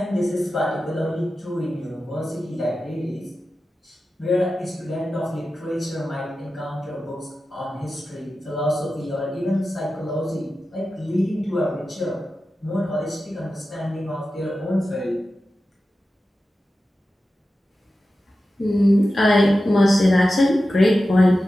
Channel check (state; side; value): normal; both; correlation 0.93